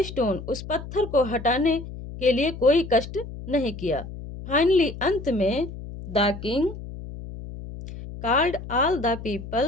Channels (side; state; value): left; noise; hum, 11 dB below the sound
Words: stone, उस पत्थर को हटाने के लिए कोई कष्ट नहीं किया। फाइनली, अंत में, the king called all the